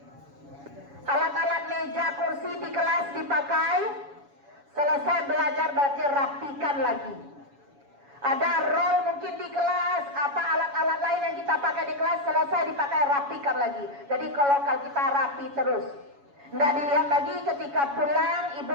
Alat-alat meja kursi di kelas dipakai, selesai belajar berarti rapikan lagi. Ada roll mungkin di kelas, apa alat-alat lain yang kita pakai di kelas, selesai dipakai rapikan lagi. Jadi kalau kita rapi terus, tidak dilihat lagi ketika pulang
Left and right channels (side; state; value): left; late; 7.1 ms